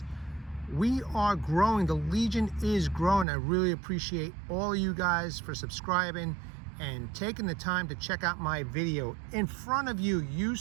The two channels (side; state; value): left; drops out; at 3.2 s